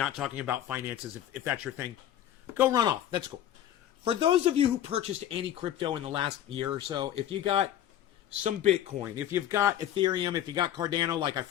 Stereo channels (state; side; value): quieter; right; 11.4 dB